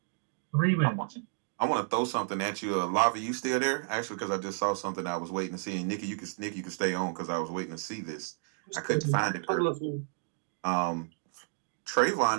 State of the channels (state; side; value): silent; left; digital silence